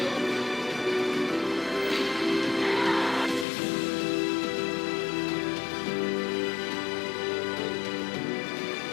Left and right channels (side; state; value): right; drops out; at 3.5 s